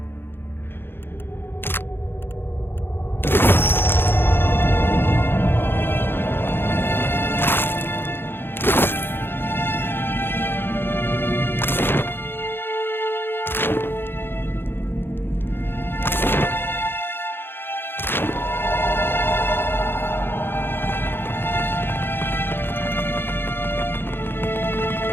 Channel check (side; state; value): right; late; 0.10 ms